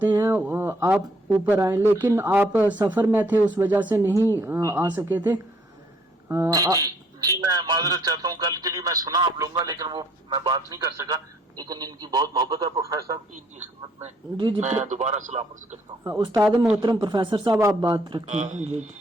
ہیں، آپ اوپر آئیں، لیکن آپ سفر میں تھے اس وجہ سے نہیں آ سکے تھے. جی میں معذرت چاہتا ہوں، کل کے لیے میں سنا آپ لوں گا لیکن وہ میں بات نہیں کر سکا. لیکن ان کی بہت محبت ہے پروفیسر صاحب کی، ان کی خدمت میں جی میں دوبارہ سلام عرض کرتا ہوں. استاد محترم پروفیسر صاحب آپ بات رکھیں. جی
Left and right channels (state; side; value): normal; both; correlation 0.64